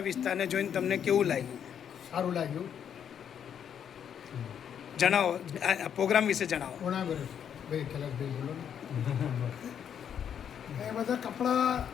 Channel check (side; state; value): right; quieter; 8.5 dB